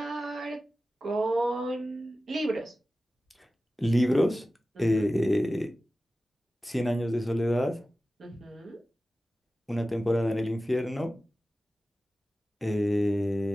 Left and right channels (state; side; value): normal; both; correlation 0.95